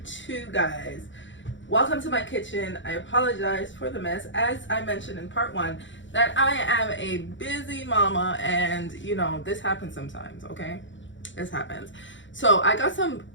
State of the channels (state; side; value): late; right; 0.55 ms